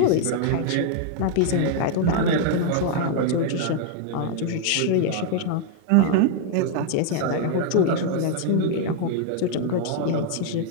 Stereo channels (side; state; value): both; different; correlation 0.00